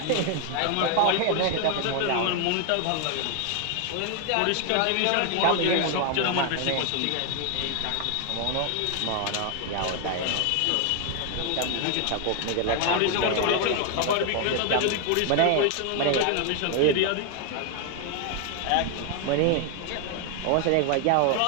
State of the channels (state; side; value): different; both; correlation 0.00